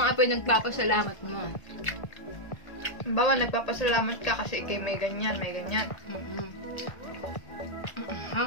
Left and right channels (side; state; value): right; late; 1.8 ms